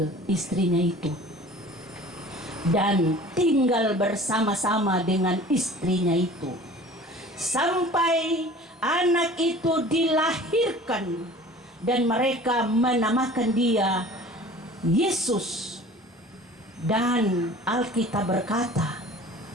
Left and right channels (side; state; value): both; normal; correlation 0.45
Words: istrinya itu dan tinggal bersama-sama dengan istrinya itu sampai anak itu dilahirkan, dan mereka menamakan dia Yesus. Dan Alkitab berkata